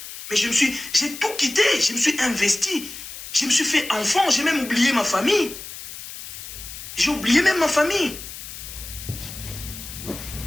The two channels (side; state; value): left; noise; hiss, 11 dB below the sound